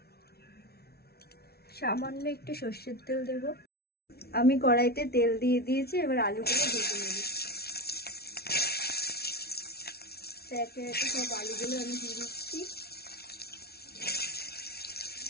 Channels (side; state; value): right; late; 0.45 ms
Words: সামান্য একটু সর্ষের তেল দেব। আমি কড়াইতে তেল দিয়ে দিয়েছি, এবার আলুগুলো ভেজে নেব। একে একে সব আলুগুলো আমি দিয়ে দিচ্ছি।